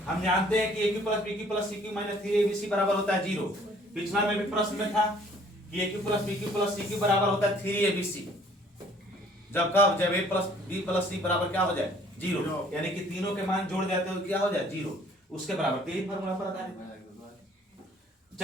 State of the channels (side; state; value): both; normal; correlation 0.57